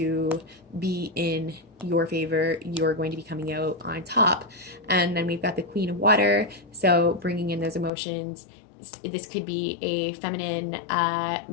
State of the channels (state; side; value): drops out; right; at 7.9 s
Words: be in your favor. You're going to be coming out on top. And then we've got the Queen of Water, so bringing in those emotions. This could be a feminine,